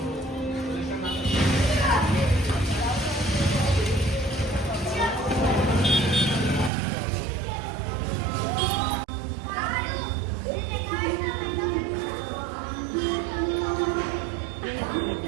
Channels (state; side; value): drops out; left; at 6.7 s